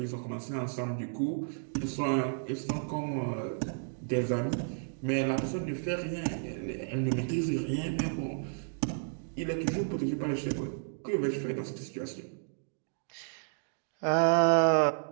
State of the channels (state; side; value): silent; left; digital silence